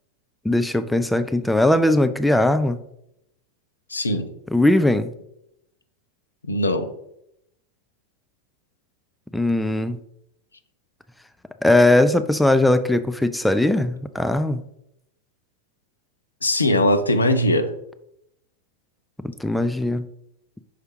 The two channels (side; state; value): both; normal; correlation 0.59